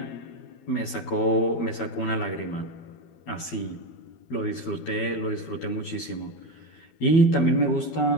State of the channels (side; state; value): right; late; 12 ms